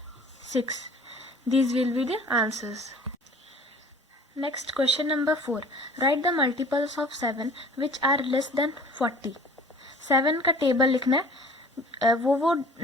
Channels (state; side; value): normal; both; correlation 0.46